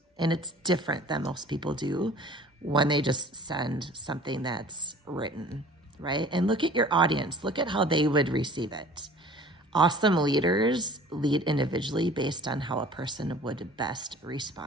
And it's different than most people do when they just send something that's written, right? And look at your audience. Look at how they would receive it. Awesome leaders lead individually based on how a person would best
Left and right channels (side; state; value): both; normal; correlation 0.47